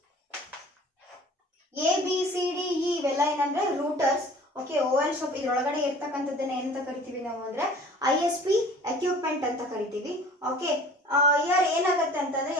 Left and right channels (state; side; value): normal; both; correlation 0.47